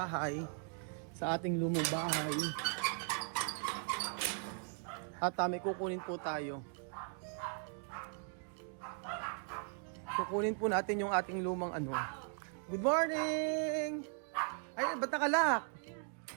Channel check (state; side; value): silent; left; 52 dB below the other